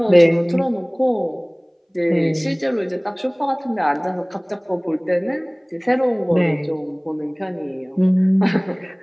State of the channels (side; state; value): both; identical; correlation 1.00